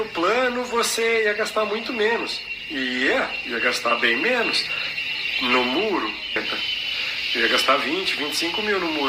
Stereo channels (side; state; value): both; identical; correlation 1.00